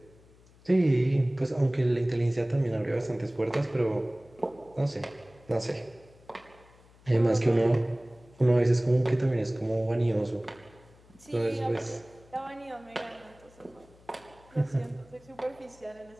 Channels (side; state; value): left; noise; hum, 27 dB below the sound